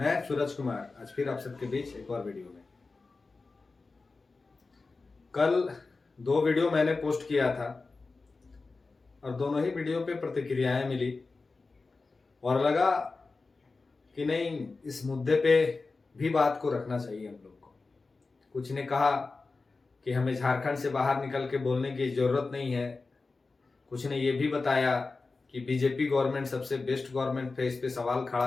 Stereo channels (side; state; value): right; quieter; 3.9 dB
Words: सूरज कुमार आज फिर आप सबके बीच एक और वीडियो में। कल 2 वीडियो मैंने पोस्ट किया था और दोनों ही वीडियो पे प्रतिक्रियाएं मिली और लगा कि नहीं, इस मुद्दे पे भी बात को रखना चाहिए हम लोग को। कुछ ने कहा कि हमें झारखंड से बाहर निकल के बोलने की जरूरत नहीं है। कुछ ने ये भी बताया कि बीजेपी गवर्नमेंट सबसे बेस्ट गवर्नमेंट है, इस पे सवाल खड़ा